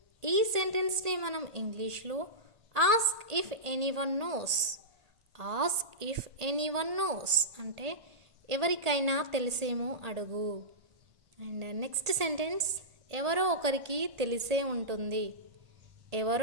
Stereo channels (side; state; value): left; late; 1.8 ms